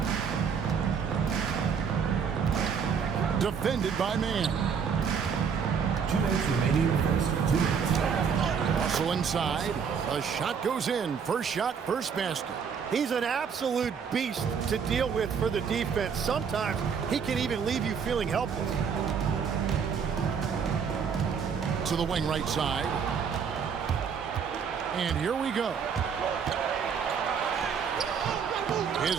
Defended by man. 2 minutes remaining in the first. 2 minutes. Also inside. A shot goes in. First shot, first basket. He's an absolute beast to deal with for the defense. Sometimes he can even leave you feeling helpless. To the wing right side. And here we go.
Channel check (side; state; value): left; quieter; 6.6 dB